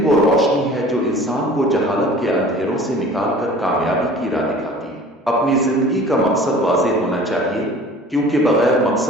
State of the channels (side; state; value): both; normal; correlation 0.45